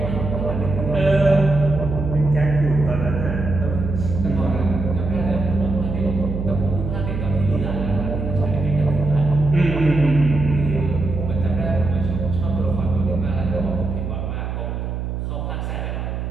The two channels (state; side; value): noise; right; hum, 4 dB below the sound